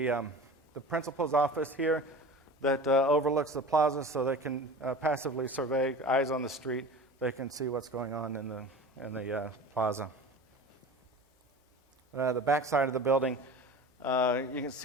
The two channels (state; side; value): normal; both; correlation 0.36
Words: the principal's office here that overlooks the plaza, so they can passively survey, eyes on the street. They can see what's going on in the plaza. The back side of the building, you can